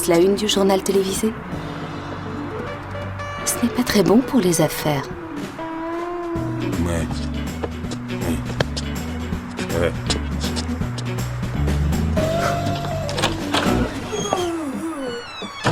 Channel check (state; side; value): identical; both; correlation 1.00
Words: la une du journal télévisé? Ce n'est pas très bon pour les affaires. Ouais. Oui. Ouais.